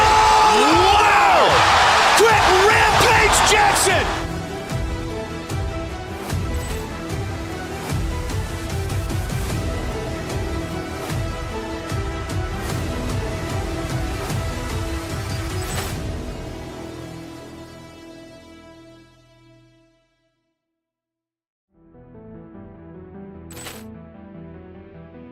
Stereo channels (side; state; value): both; identical; correlation 1.00